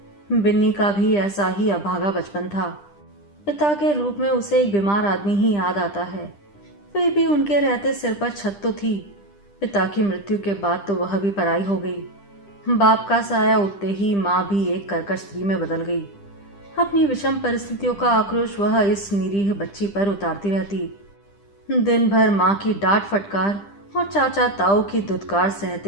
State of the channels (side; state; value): right; late; 10 ms